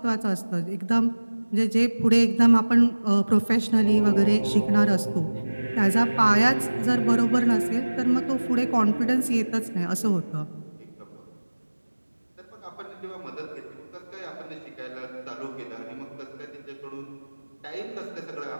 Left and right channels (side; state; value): both; inverted; correlation -1.00